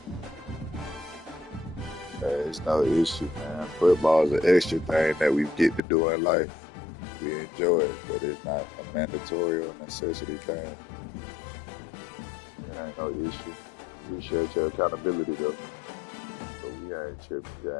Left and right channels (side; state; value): right; drops out; at 5.8 s